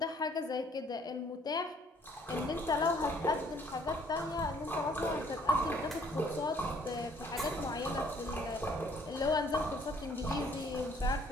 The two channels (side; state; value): both; normal; correlation 0.61